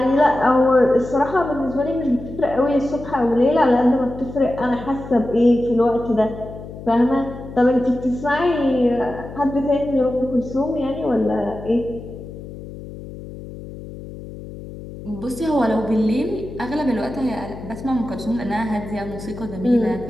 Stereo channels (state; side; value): noise; left; hum, 13 dB below the sound